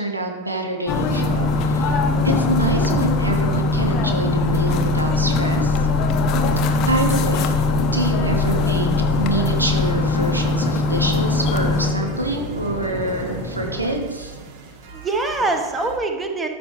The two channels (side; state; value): both; normal; correlation 0.28